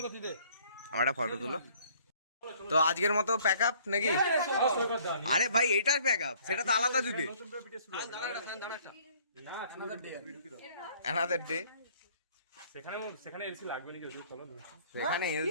আমার একটা ফটো তুলো। তো আজকের মতো প্যাক আপ নাকি? আরে ভাই এইটার প্যাক আপ, সেটা তো আলাদা দিবে। না অ্যানাদার ডে। সেখানে এসি লাগবে না, যদি চলো। সেখানে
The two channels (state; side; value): inverted; both; correlation -0.58